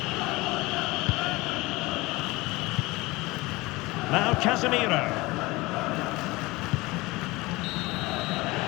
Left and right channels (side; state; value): right; quieter; 21.9 dB